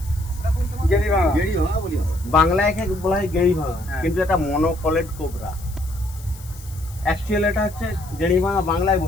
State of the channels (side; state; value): left; noise; hiss, 20 dB below the sound